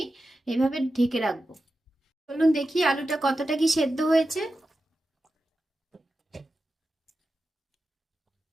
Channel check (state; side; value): normal; both; correlation 0.91